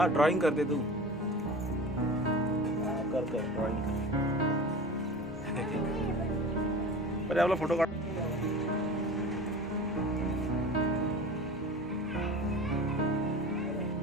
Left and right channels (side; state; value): both; normal; correlation 0.36